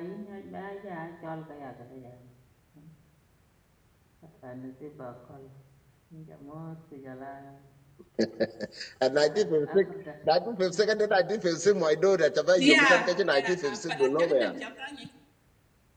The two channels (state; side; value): identical; both; correlation 1.00